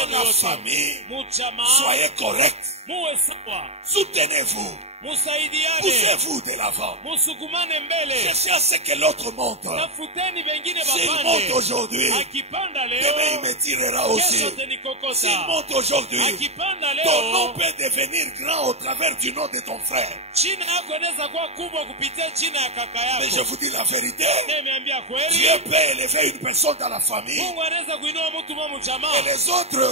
la yote, famille, mu jamaa, soyez corrects. muwe sawa, Soutenez-vous. musaidiane, Poussez-vous de l'avant. musukumane mbele. Cherchez à ce que l'autre monte. Tafuteni wengine S'il monte bapande. aujourd'hui, Akipanda demain il leo, me tirera aussi. kesho S'il tenikokota. monte aujourd'hui, Akipanda ton nom leo, peut devenir grand au travers du nom de ton frère. jina yako inaweza kuwa kubwa kupitia jina ya kaka Mais je yako. vous dis la vérité, Nimeambia kweli, Dieu peut élever une personne dans la famille Mungu anaweza kuinua mtu mwa et mjamaa. les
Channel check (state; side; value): late; left; 0.31 ms